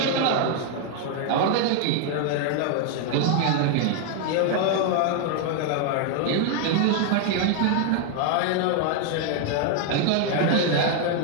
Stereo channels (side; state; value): both; different; correlation 0.00